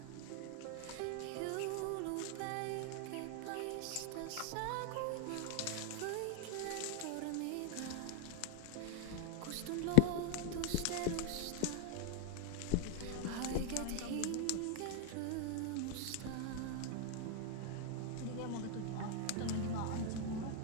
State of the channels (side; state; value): both; different; correlation 0.01